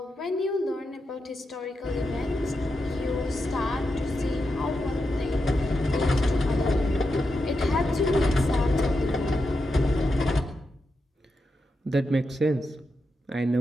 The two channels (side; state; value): both; normal; correlation 0.87